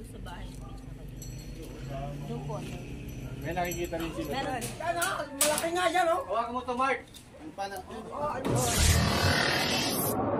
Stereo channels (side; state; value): both; identical; correlation 1.00